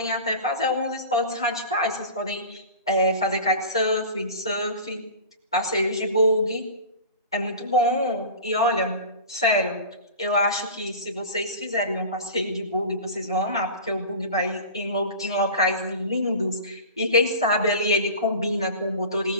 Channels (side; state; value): both; inverted; correlation -0.35